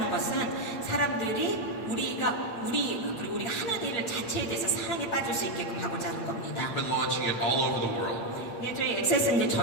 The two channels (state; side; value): late; right; 8.7 ms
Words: 것은 사람들이 그리고 우리가 하는 일 자체에 대해서 사랑에 빠질 수 있게끔 하고자 하는 겁니다. We've been launching it all over the world. 네, 저희 액세스는 이제